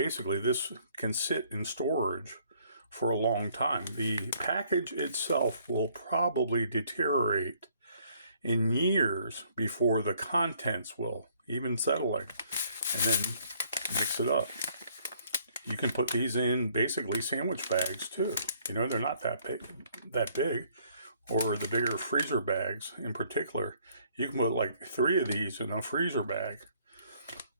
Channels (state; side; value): inverted; both; correlation -0.63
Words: this can sit in storage for a long time. The package itself will probably deteriorate in years before the contents will, even settling, and then mix it up. You can put these in basically sandwich bags too. You know, they're not that big. Or the bigger freezer bags in particular. You can put like 3 of these in a freezer bag